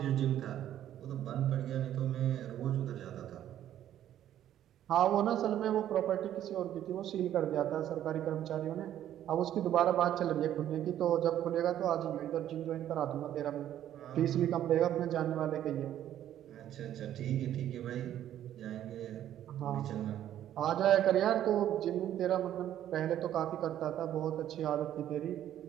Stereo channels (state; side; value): quieter; left; 11.5 dB